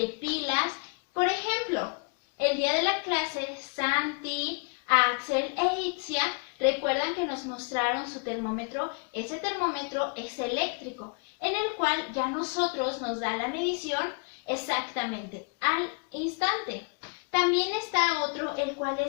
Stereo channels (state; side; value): quieter; right; 37.1 dB